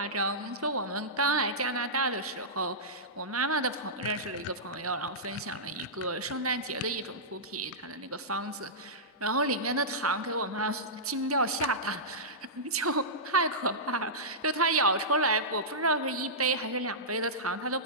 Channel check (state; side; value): normal; both; correlation -0.16